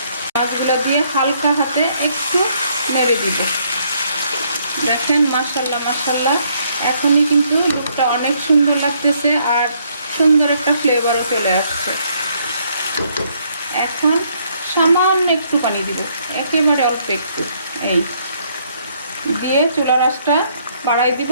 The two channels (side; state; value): both; inverted; correlation -0.69